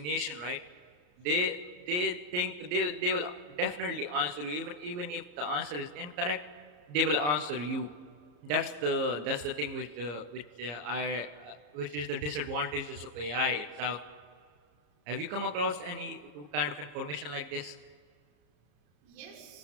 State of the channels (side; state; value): left; late; 34 ms